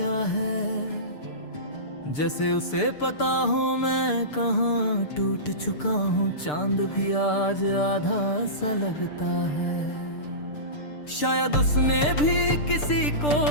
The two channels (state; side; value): late; right; 6.7 ms